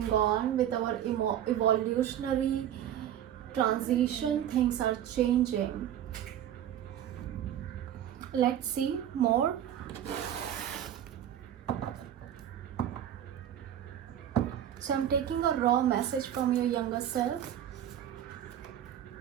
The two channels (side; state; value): left; quieter; 10.6 dB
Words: on with our evolutionary transition, things are changing. Let's see more. So I'm taking a raw message from your younger self.